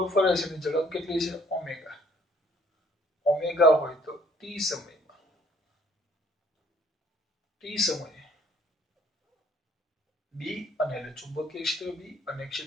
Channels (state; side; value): normal; both; correlation 0.60